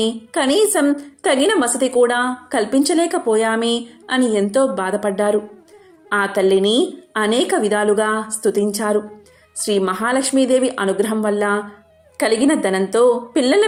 కనీసం తగిన వసతి కూడా కల్పించలేకపోయామే అని ఎంతో బాధపడ్డారు. ఆ తల్లిని అనేక విధాలుగా స్తుతించారు. శ్రీ మహాలక్ష్మీదేవి అనుగ్రహం వల్ల కలిగిన ధనంతో పిల్లల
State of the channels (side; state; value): both; identical; correlation 1.00